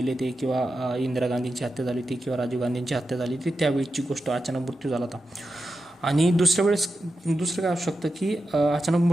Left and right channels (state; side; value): normal; both; correlation 0.90